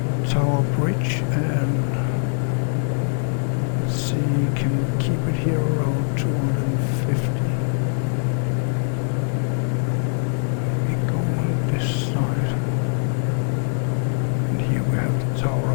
Tower Bridge, and let's see, can we keep it here around 250? Maybe go on this side. And here we have the Tower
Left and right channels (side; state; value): right; silent; digital silence